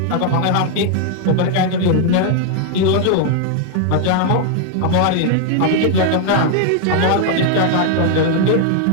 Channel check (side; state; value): both; different; correlation 0.00